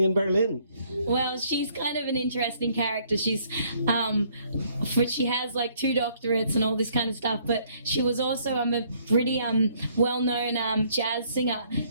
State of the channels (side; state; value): both; inverted; correlation -0.64